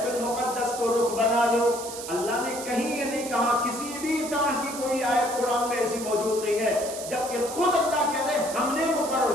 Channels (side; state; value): right; noise; hiss, 10 dB below the sound